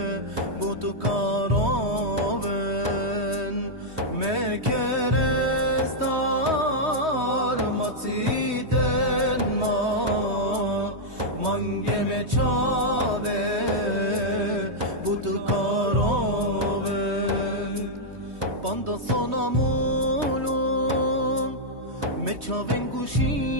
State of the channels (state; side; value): late; left; 3.2 ms